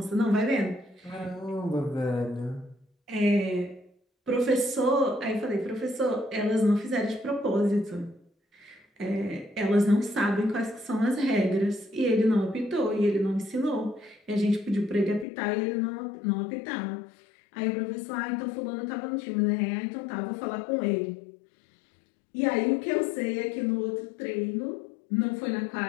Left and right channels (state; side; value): drops out; right; at 15.2 s